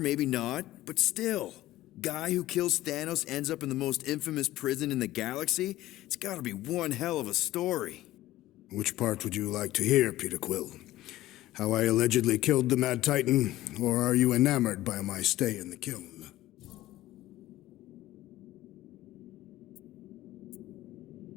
not, but still. Guy who kills Thanos ends up in the most infamous prison in the galaxy? It's gotta be one hell of a story. Which part would you like to hear, Peter Quill? How I allegedly killed the Mad Titan, or are you enamored by my stay in the kiln?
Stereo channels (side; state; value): right; quieter; 15.8 dB